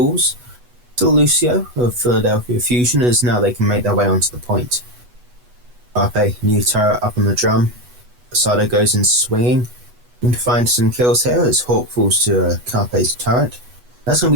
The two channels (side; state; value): left; late; 8.2 ms